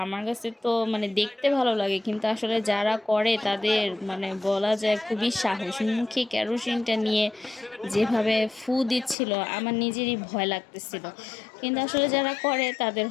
আমার কাছে। তো মানে দেখতে ভালো লাগে, কিন্তু আসলে যারা করে তাদের মানে বলা যায় খুবই সাহস। মুখে কেরোসিনটা নিয়ে যেভাবে ফু দিচ্ছিল, আমার নিজেরই ভয় লাগতেছিল। কিন্তু আসলে যারা করে তাদের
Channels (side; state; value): right; drops out; at 9.2 s